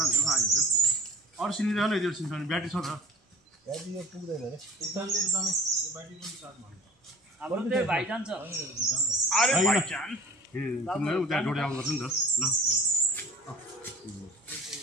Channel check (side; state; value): both; normal; correlation 0.44